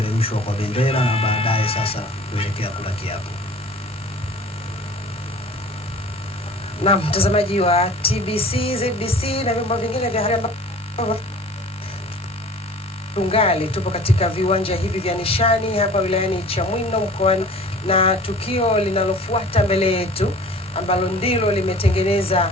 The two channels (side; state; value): both; normal; correlation 0.45